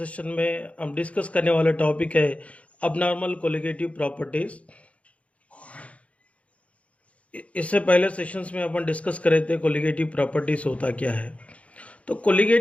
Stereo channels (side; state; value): right; late; 0.064 ms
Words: में हम डिस्कस करने वाला टॉपिक है अबनॉर्मल कोलिगेटिव प्रॉपर्टीज। इससे पहले सेशंस में अपन डिस्कस कर रहे थे कोलिगेटिव प्रॉपर्टीज होता क्या है। तो